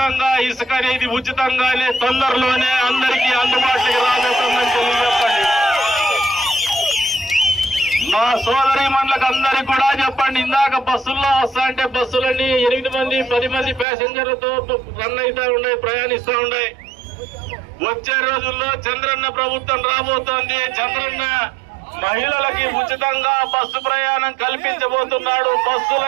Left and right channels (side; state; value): left; drops out; at 13.9 s